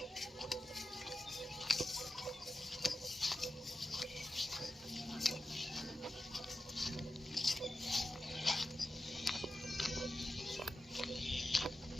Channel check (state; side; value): normal; both; correlation 0.92